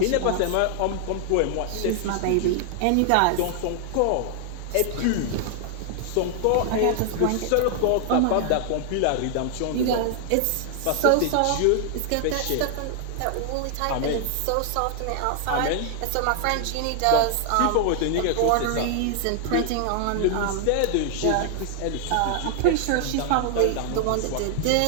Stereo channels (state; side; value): different; both; correlation 0.00